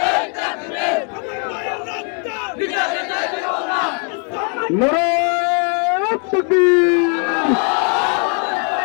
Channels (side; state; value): right; quieter; 39.9 dB